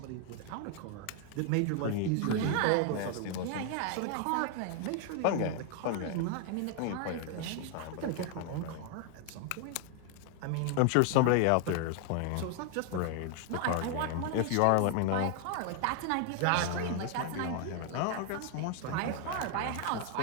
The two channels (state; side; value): different; both; correlation 0.00